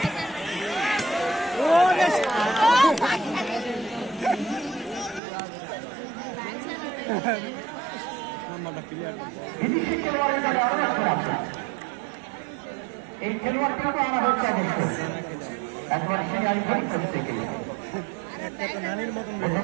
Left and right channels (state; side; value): drops out; left; at 5.2 s